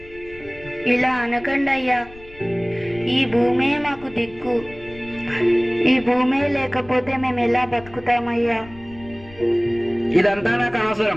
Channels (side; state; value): left; noise; rumble, 20 dB below the sound